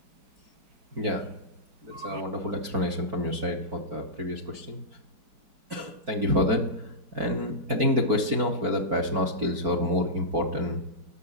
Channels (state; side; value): late; left; 4.5 ms